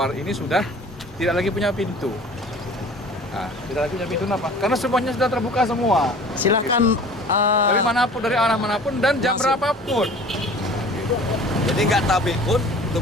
ini sudah tidak lagi punya pintu. Nah, tidak lagi punya pintu kenapa? Karena semuanya sudah terbuka semua. Silakan Dari manapun, dari arah manapun dan jam berapapun. Jadi nggak tabik pun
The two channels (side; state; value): both; normal; correlation 0.45